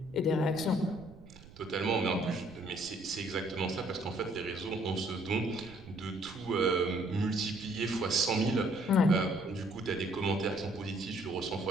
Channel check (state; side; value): noise; right; rumble, 20 dB below the sound